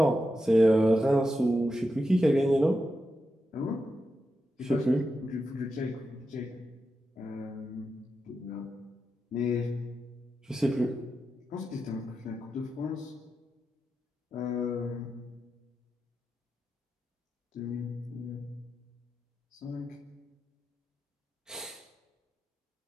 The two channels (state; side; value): normal; both; correlation 0.88